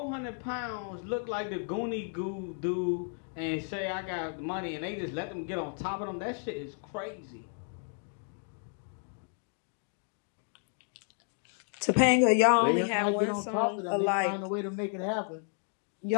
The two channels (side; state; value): right; silent; 56 dB below the other